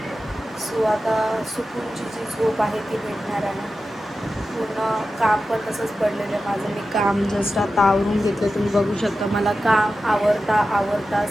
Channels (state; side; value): normal; both; correlation 0.92